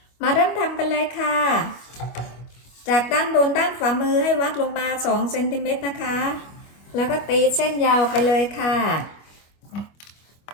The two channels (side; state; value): right; late; 25 ms